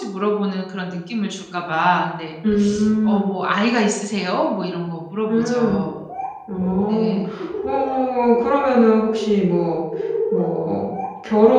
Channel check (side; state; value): both; identical; correlation 1.00